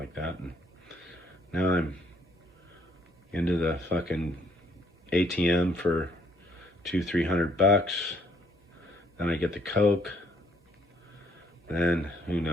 that. And now I'm into the fucking ATM for $200-300. Then I get the Coke. Then who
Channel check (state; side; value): normal; both; correlation 0.66